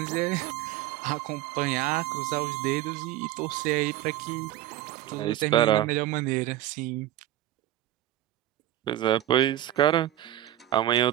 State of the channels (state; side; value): quieter; left; 13.3 dB